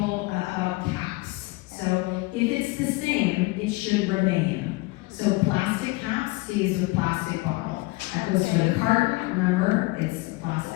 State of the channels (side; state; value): right; quieter; 22.9 dB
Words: about caps. So if it's the same, it should remain. So plastic cap stays with plastic bottle. That goes for the carton, remember, it's a